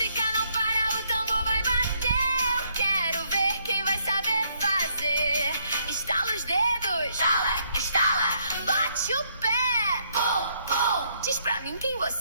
não para, o tambor vai bater. Eu quero ver quem vai saber fazer. Estala os dedos, estala, estala, bate o pé, pum, pum. Diz pra mim quem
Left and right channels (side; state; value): both; inverted; correlation -0.71